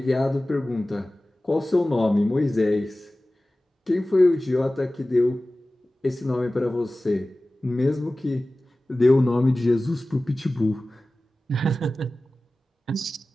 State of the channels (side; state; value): both; normal; correlation 0.97